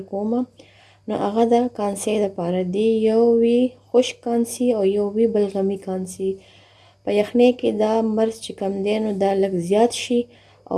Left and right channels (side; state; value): both; identical; correlation 1.00